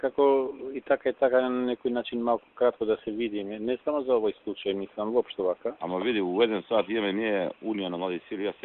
и така на некој начин малку кратко да се видиме, не само за овој случај, мислам воопшто вака. Ама види, у 1 сат имаме ние Унија на млади сили, јас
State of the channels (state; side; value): identical; both; correlation 1.00